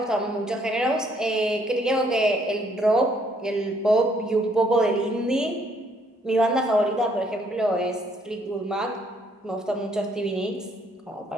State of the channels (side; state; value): both; normal; correlation 0.67